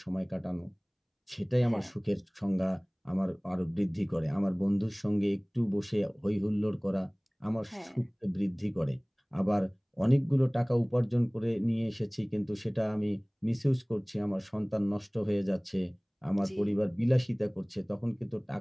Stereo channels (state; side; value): identical; both; correlation 1.00